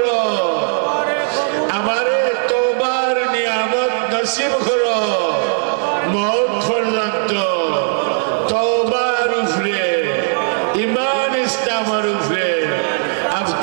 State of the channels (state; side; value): silent; left; 68 dB below the other